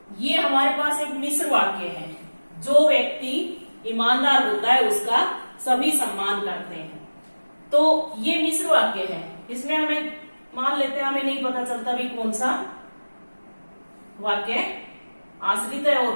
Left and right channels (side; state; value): both; inverted; correlation -1.00